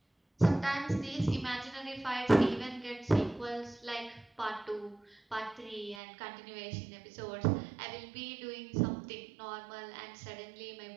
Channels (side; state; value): left; drops out; at 6.0 s